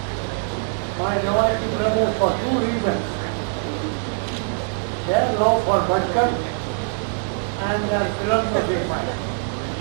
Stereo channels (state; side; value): silent; left; 61 dB below the other